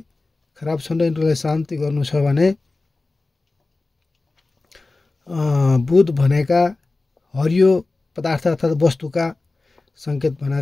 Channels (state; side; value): quieter; right; 3.3 dB